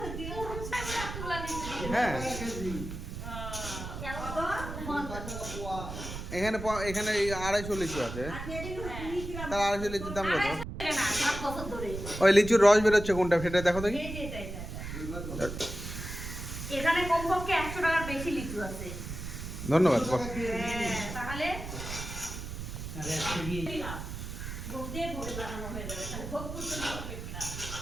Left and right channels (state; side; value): noise; right; rumble, 8 dB below the sound